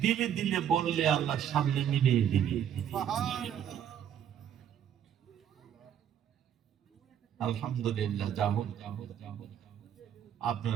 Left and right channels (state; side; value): quieter; left; 9.5 dB